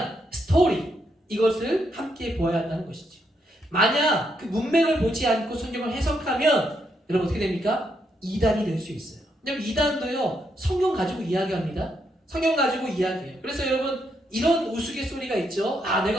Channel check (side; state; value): both; normal; correlation 0.78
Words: 스토리, 이것을 함께 보아야 한다는 것이죠. 만약 그 문맥을 보지 않고 성경을 해석하면 여러분 어떻게 됩니까? 이단이 될 수 있어요. 왜냐면 이단도요, 성경 가지고 이야기합니다. 성경 가지고 이야기해요. 그래서 여러분, 이런 우스갯소리가 있죠. 아,